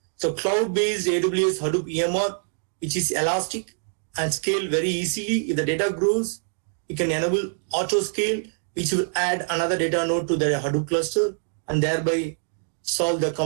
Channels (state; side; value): silent; left; digital silence